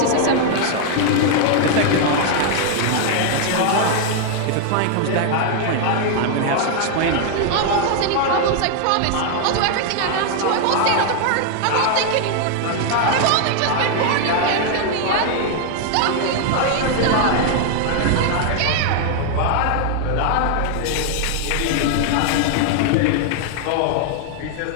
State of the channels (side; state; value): both; different; correlation 0.00